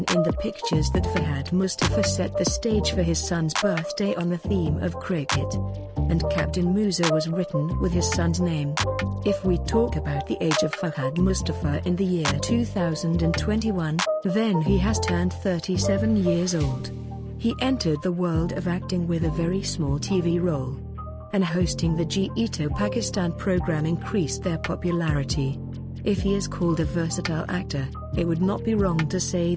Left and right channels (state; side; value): identical; both; correlation 1.00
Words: in the pictures that Fahad Mustafa set the stage for his son's birthday on the theme of cricket, and Captain Moosa was written with his son's name. If we talk about the age of Fahad Mustafa in the year 2021, then he has turned 37 years old. He entered the world of acting with a very small TV role, and hosting the Jeeto Pakistan program increased their popularity. If he is called a versatile actor, it would not be wrong to say